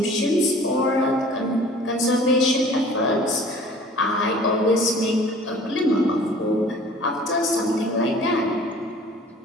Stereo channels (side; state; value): both; normal; correlation 0.48